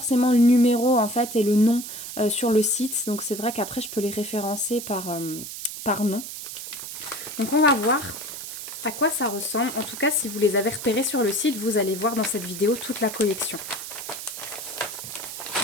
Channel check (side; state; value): right; noise; hiss, 9 dB below the sound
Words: le numéro en fait et le nom sur le site. Donc c'est vrai qu'après, je peux les référencer par nom. Donc on va voir à quoi ça ressemble. En tout cas, si vous les avez repérés sur le site, vous allez voir dans cette vidéo toute la collection.